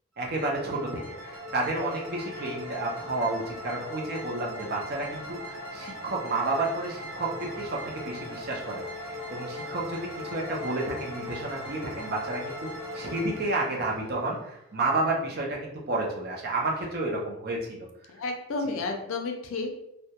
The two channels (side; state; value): both; normal; correlation 0.05